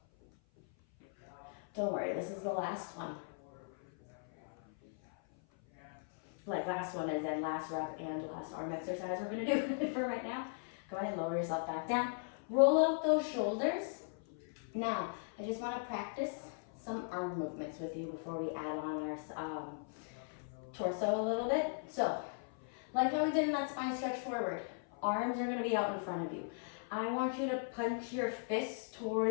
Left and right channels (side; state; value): right; silent; 52 dB below the other